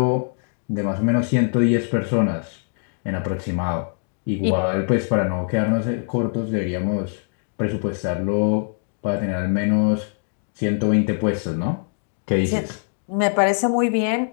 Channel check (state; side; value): silent; right; 64 dB below the other